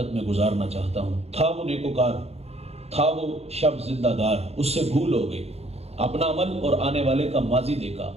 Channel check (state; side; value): late; left; 0.30 ms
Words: میں گزارنا چاہتا ہوں۔ تھا وہ نیکوکار، تھا وہ شب زندہ دار، اس سے بھول ہو گئی۔ اپنا عمل اور آنے والے کا ماضی دیکھا